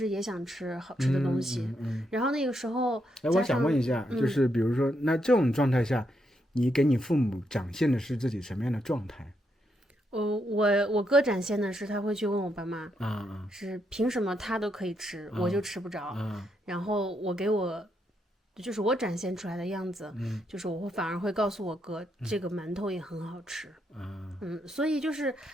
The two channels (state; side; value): normal; both; correlation 0.79